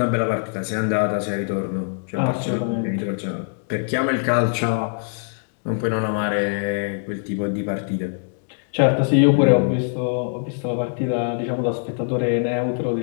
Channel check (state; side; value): silent; right; digital silence